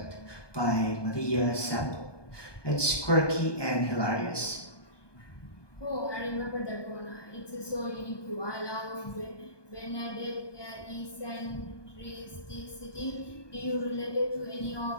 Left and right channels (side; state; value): right; late; 1.2 ms